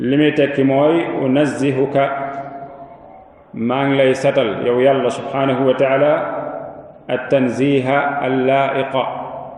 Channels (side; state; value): both; identical; correlation 1.00